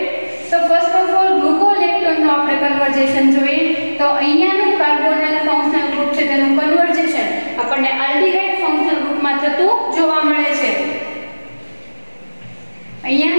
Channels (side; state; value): both; inverted; correlation -1.00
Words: તો ફર્સ્ટ ઓફ ઓલ ગ્લુકોલેક્ટોનનું આપણે કન્વર્ઝેશન જોઈએ. તો અહીંયાનું કાર્બોનાઇલ ફંક્શનલ ગ્રુપ છે તેનું કન્વર્ઝેશન આપણને આલ્ડીહાઇડ ફંક્શનલ ગ્રુપમાં થતું જોવા મળે છે.